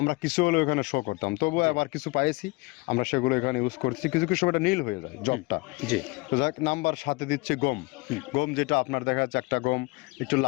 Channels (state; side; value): quieter; right; 24.8 dB